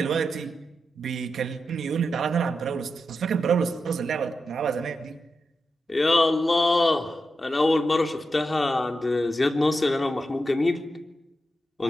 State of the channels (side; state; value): both; normal; correlation 0.88